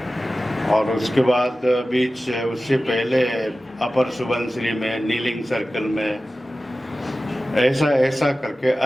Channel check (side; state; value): both; normal; correlation 0.95